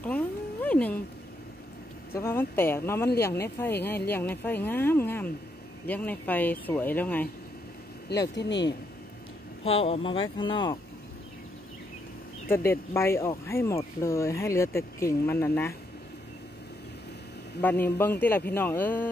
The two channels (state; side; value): normal; both; correlation 0.77